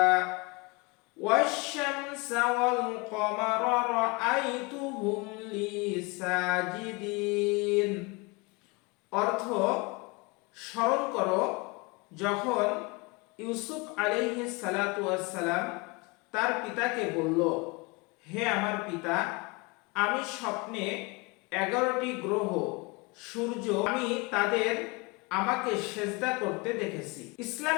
ওয়াশ-শামসা ওয়াল কমারা রাআইতুহুম লি সাজিদিন। অর্থ: স্মরণ করো যখন ইউসুফ আলাইহিস সালাতু ওয়াস সালাম তার পিতাকে বলল, হে আমার পিতা, আমি স্বপ্নে 11টি গ্রহ, সূর্য, আমি তাদের আমাকে সেজদা করতে দেখেছি।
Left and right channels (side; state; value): right; quieter; 27.5 dB